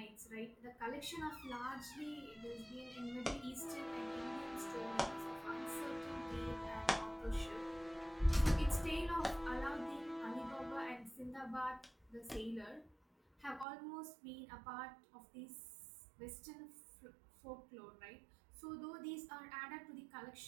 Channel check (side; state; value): left; drops out; at 13.7 s